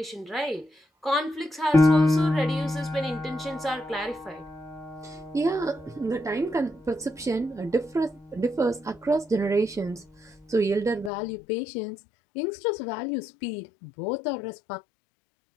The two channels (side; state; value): right; drops out; at 11.1 s